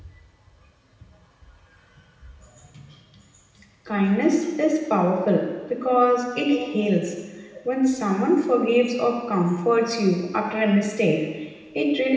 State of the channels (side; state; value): both; identical; correlation 1.00